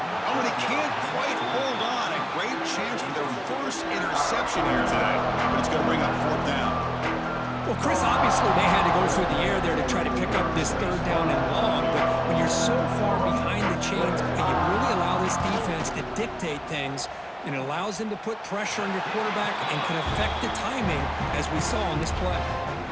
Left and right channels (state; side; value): identical; both; correlation 1.00